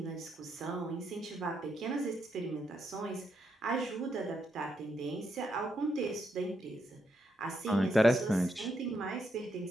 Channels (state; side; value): normal; both; correlation 0.80